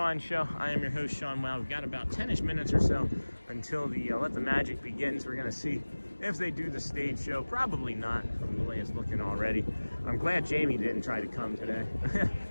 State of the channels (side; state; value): both; inverted; correlation -1.00